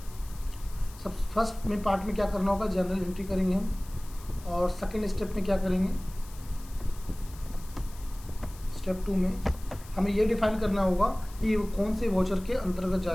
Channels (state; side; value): noise; left; hiss, 20 dB below the sound